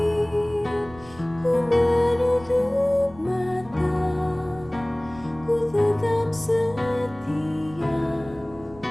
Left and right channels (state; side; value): noise; right; rumble, 21 dB below the sound